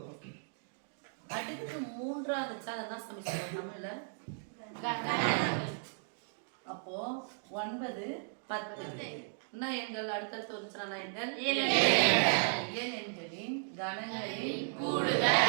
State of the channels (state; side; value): silent; left; digital silence